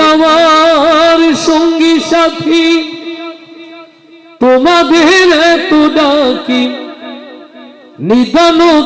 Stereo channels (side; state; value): both; identical; correlation 1.00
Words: আমার সঙ্গী সাথী, তোমাদের এত ডাকি, নিদান